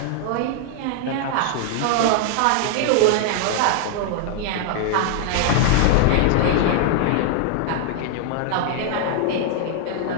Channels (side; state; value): both; different; correlation 0.00